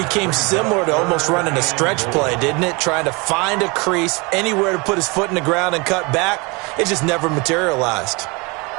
similar to almost running a stretch play, didn't it? Trying to find a crease, anywhere to put his foot in the ground and cut back. It just never materialized.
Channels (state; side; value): quieter; left; 27.9 dB